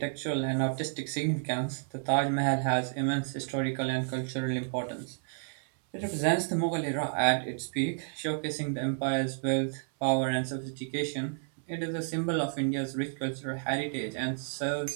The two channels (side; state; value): left; silent; 57 dB below the other